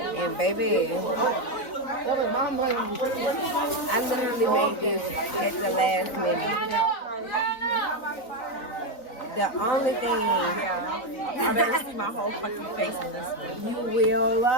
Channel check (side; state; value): right; late; 3.9 ms